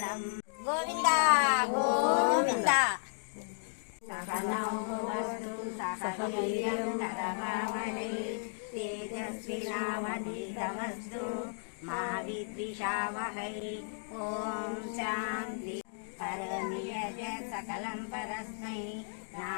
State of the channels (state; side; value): silent; right; digital silence